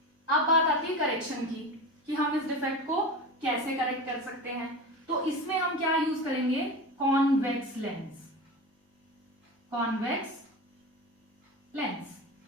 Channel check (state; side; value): normal; both; correlation 0.27